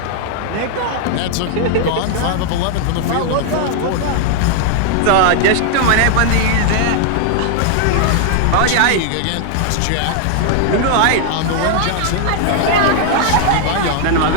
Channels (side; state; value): both; different; correlation 0.00